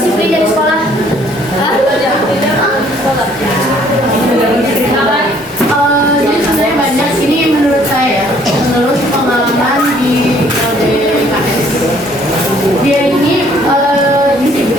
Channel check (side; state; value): both; normal; correlation 0.61